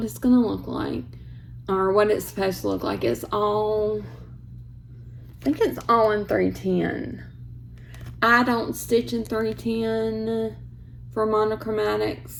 it's going to look like. Or what it's supposed to look like. It's all, I think it's all in 310. I don't stitch in 310 for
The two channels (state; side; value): identical; both; correlation 1.00